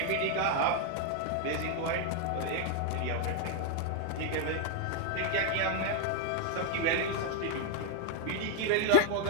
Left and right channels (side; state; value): both; different; correlation 0.01